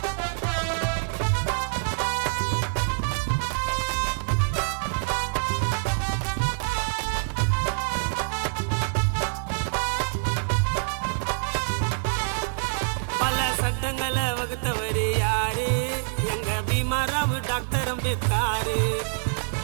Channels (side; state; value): left; silent; digital silence